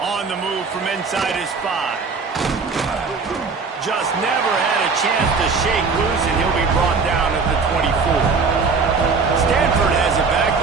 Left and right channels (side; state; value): left; quieter; 4.8 dB